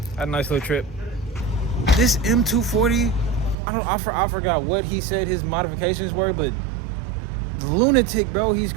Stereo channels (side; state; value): left; drops out; at 3.6 s